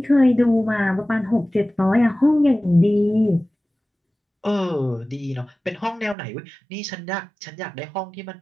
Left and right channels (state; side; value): drops out; left; at 6.2 s